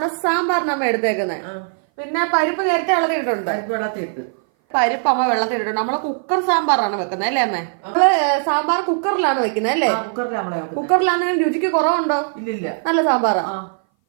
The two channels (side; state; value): left; silent; 59 dB below the other